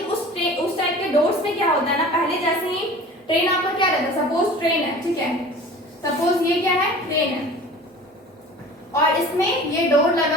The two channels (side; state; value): both; normal; correlation 0.41